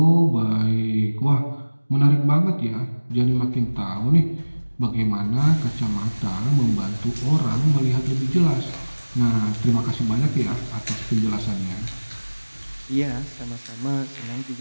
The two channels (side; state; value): both; inverted; correlation -1.00